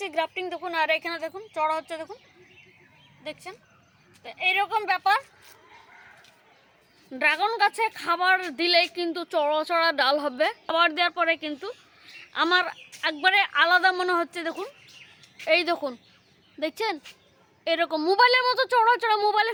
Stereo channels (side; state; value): both; identical; correlation 1.00